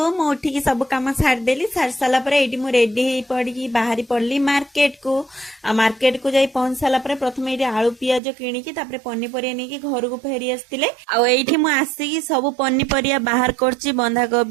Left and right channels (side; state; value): left; drops out; at 8.2 s